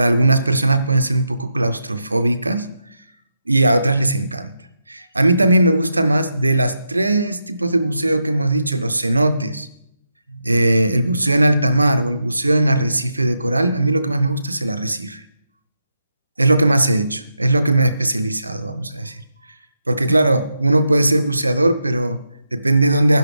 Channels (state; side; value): inverted; both; correlation -0.84